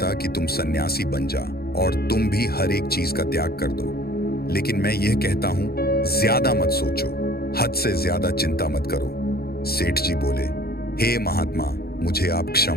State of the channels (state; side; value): late; right; 0.45 ms